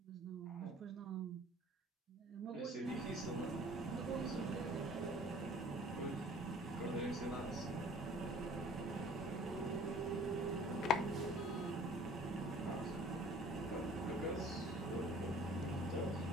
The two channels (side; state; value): both; normal; correlation 0.50